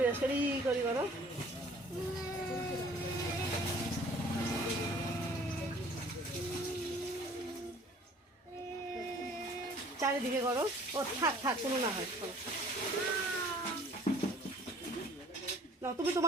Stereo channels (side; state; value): both; normal; correlation 0.52